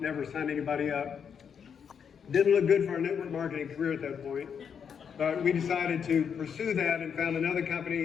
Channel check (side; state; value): right; quieter; 7.2 dB